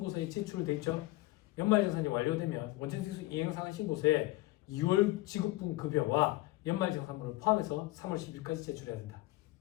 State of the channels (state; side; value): quieter; right; 19.1 dB